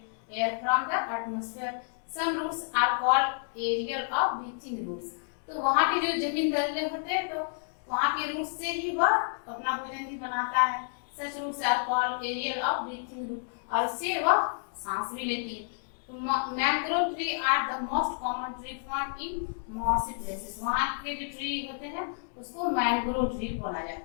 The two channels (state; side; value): silent; right; digital silence